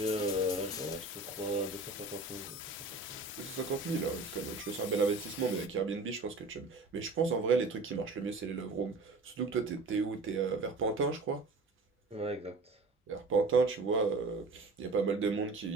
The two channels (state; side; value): quieter; left; 3.3 dB